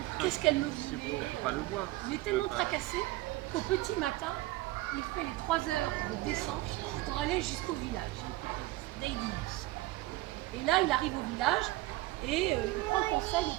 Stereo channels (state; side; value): quieter; left; 18.8 dB